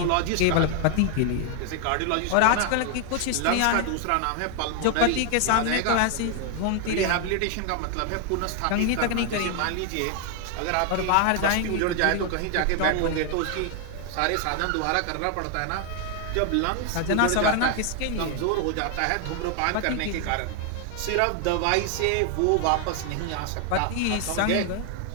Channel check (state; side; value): different; both; correlation 0.00